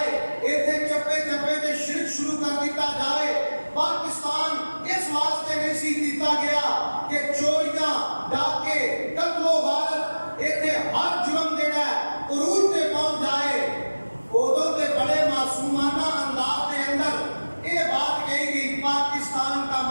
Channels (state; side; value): inverted; both; correlation -1.00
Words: ایتھے چپے چپے دے شرک شروع کر دیتا جائے. پاکستان اس واسطے نہیں سی کیتا گیا کہ چوریاں ڈاکے قتل و غارت ایتھے ہر جرم جڑا ہے عروج تے پہنچ جائے. ادوں تے بڑے معصومانہ انداز کے اندر یہ بات کہی گئی پاکستان کا